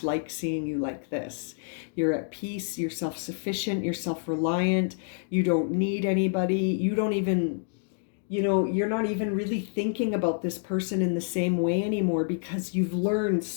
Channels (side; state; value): right; silent; digital silence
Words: like seeing you like this. You're at peace, you're self-sufficient, you're self-reliant, you don't need anybody, you don't even... you're not even really thinking about this person in the same way anymore because you've learned